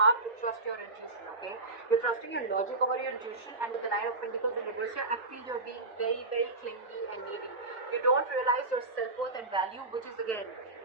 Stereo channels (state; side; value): quieter; left; 3.2 dB